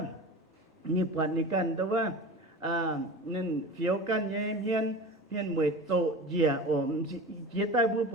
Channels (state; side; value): normal; both; correlation 0.33